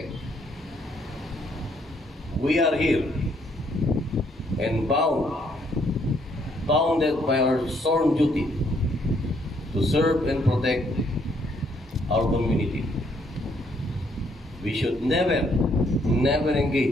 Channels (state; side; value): normal; both; correlation 0.69